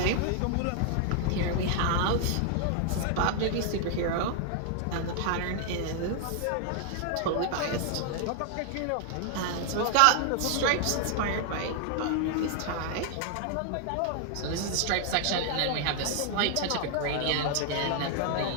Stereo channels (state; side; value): different; both; correlation 0.00